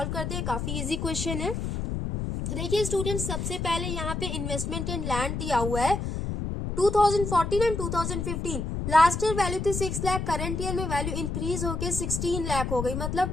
करते हैं। काफी इजी क्वेश्चन है। तो देखिए स्टूडेंट्स, सबसे पहले यहाँ पे इन्वेस्टमेंट इन लैंड दिया हुआ है 2014 एंड 2015। लास्ट ईयर वैल्यू थी 6 लाख, करंट ईयर में वैल्यू इंक्रीज होके 16 लाख हो गई।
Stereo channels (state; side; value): noise; left; rumble, 3 dB below the sound